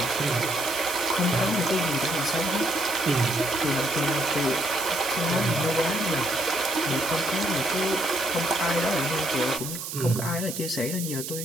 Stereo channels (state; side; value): noise; right; hiss, 7 dB below the sound